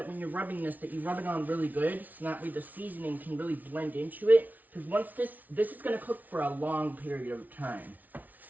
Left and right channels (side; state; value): left; late; 0.078 ms